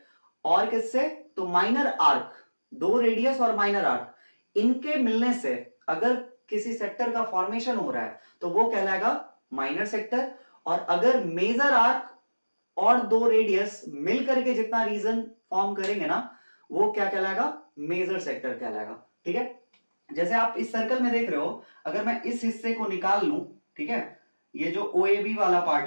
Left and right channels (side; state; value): both; inverted; correlation -1.00